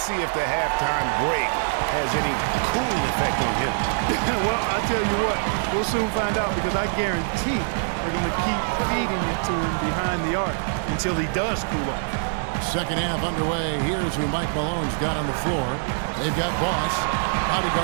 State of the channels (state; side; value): silent; left; digital silence